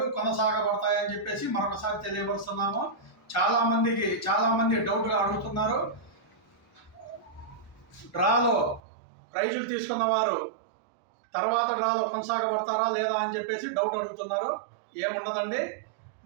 కొనసాగబడతాయని చెప్పేసి మరొకసారి తెలియపరుస్తున్నాము. చాలామంది డౌట్గా అడుగుతున్నారు, డ్రాలో ప్రైజులు తీసుకున్న వారు తర్వాత డ్రాలో కొనసాగబడతారా లేదా అని చెప్పేసి డౌట్ అడుగుతున్నారు. ఏముండదండి,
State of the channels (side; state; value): left; drops out; at 8.8 s